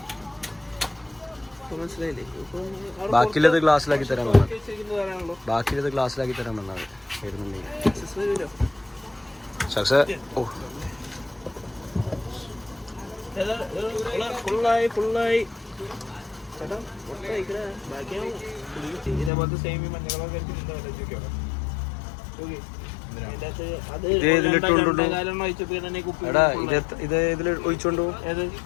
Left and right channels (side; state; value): right; drops out; at 19.3 s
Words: മനസ്സിലായില്ലേ ബാക്കിയിലത് ഗ്ലാസ്സിലാക്കി തരാൻ ബാക്കിയിലത് ഗ്ലാസ്സിലാക്കി തരാൻ വന്നത് വരുന്നുണ്ടെങ്കിൽ ഓ ഫുള്ളായി ഇതേപോലത്തെ സേമി മഞ്ഞളൊക്കെ എടാ ഇത് ഇതിൽ ഒഴിച്ചോണ്ടു